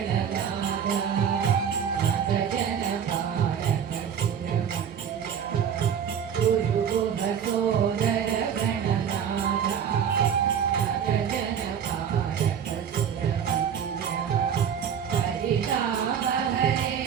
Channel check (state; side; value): quieter; left; 8.2 dB